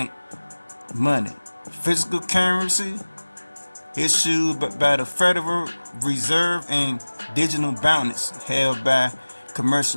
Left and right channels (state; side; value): inverted; both; correlation -1.00